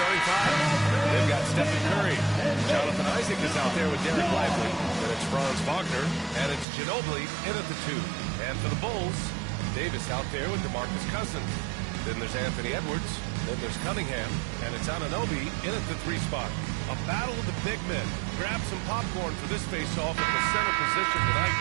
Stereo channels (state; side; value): drops out; left; at 6.7 s